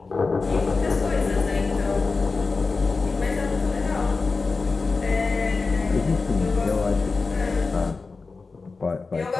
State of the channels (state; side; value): quieter; right; 4.1 dB